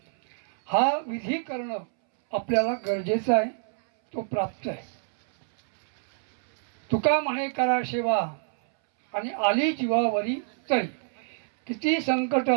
हा विधी करणं आपल्याला गरजेचं आहे, तो प्राप्त आहे. तुका म्हणे करा सेवा आणि आली जीवावरी तरी, किती संकट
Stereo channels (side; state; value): left; silent; 61 dB below the other